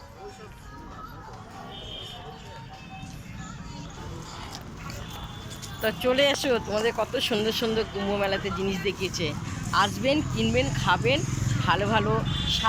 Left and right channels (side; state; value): both; identical; correlation 1.00